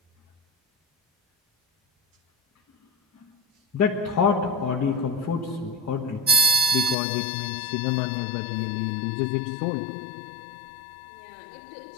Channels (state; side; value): drops out; right; at 7.0 s